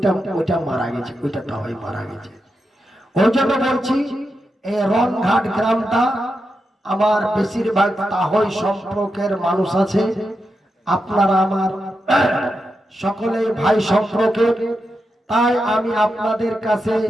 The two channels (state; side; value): normal; both; correlation 0.87